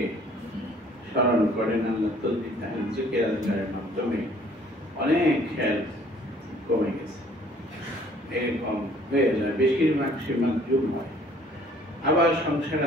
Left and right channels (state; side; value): normal; both; correlation 0.57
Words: স্মরণ করেন, আল্লাহ তসবিহ তাহলিল জিকির আজকারের মাধ্যমে অনেক খেয়াল কমে গেছে, এরকম হয়ে যায়। বেশিরভাগ সে মাতজুব হয়। আবার সংসার